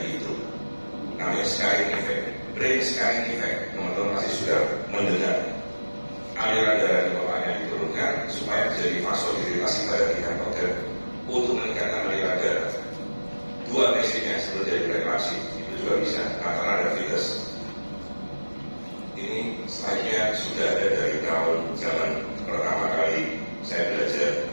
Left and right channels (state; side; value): inverted; both; correlation -1.00